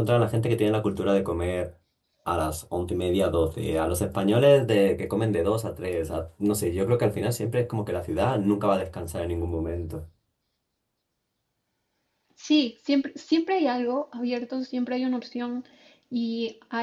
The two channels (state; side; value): identical; both; correlation 1.00